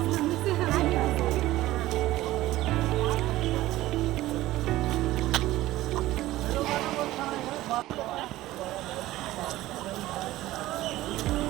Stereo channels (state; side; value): quieter; left; 16.3 dB